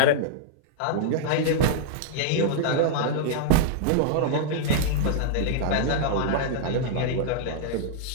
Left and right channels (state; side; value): different; both; correlation -0.01